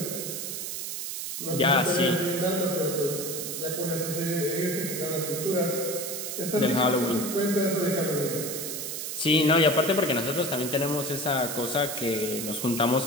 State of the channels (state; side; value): noise; right; hiss, 5 dB below the sound